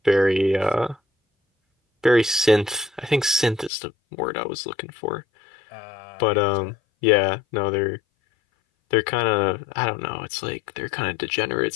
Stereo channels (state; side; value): drops out; right; at 3.7 s